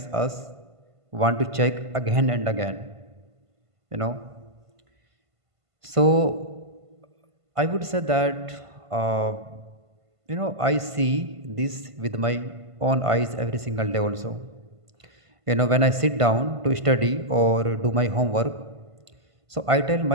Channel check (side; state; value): left; late; 1.5 ms